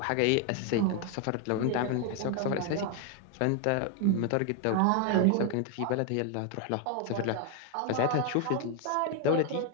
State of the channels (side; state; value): both; different; correlation 0.00